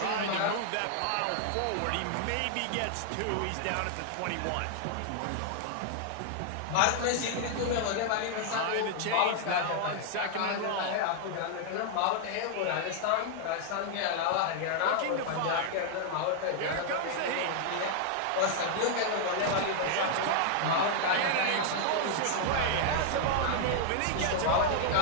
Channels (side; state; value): both; different; correlation 0.00